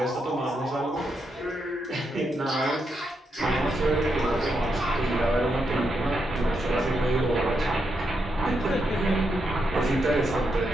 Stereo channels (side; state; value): both; normal; correlation 0.82